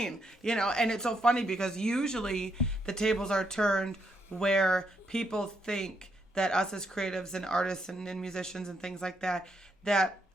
And it's so funny because usually the tables are turned where people think that us as creatives and artists and musicians and things like that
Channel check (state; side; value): normal; both; correlation 0.77